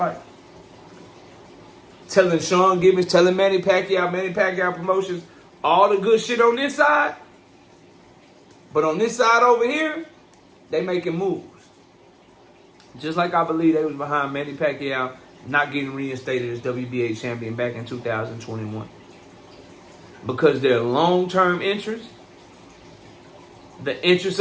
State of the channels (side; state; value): both; identical; correlation 1.00